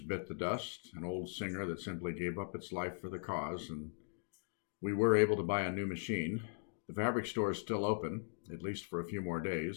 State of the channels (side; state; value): right; silent; digital silence